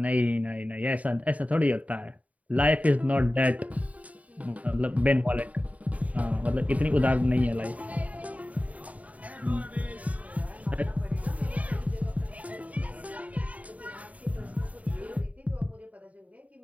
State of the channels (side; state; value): left; late; 0.070 ms